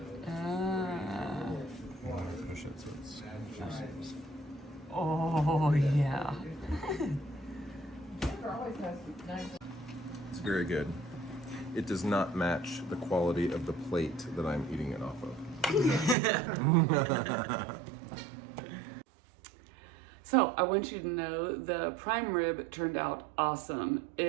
Push it so it's Oh, yeah. Denver always has nice. It's very good. It does not match the quality of the plate that I'm eating it off of. So I want you to know the prime rib turned out awesome.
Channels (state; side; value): drops out; left; at 16.2 s